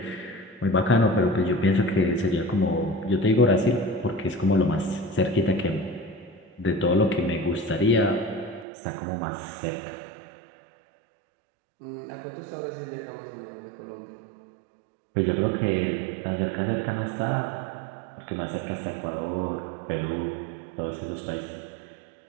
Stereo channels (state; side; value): drops out; left; at 8.7 s